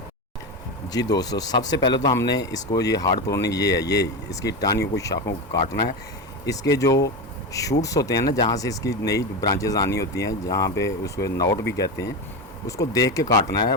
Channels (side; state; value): both; normal; correlation 0.18